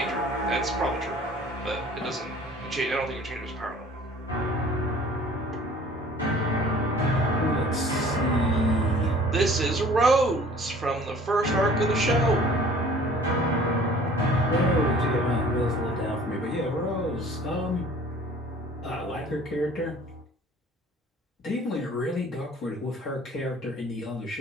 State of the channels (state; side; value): normal; both; correlation 0.50